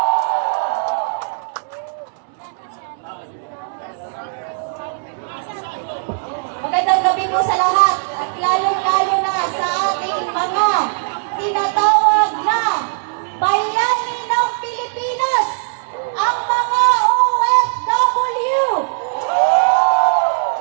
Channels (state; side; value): silent; left; digital silence